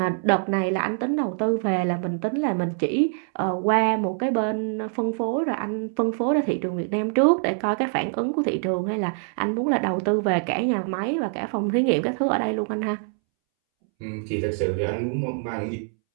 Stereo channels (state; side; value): silent; left; 62 dB below the other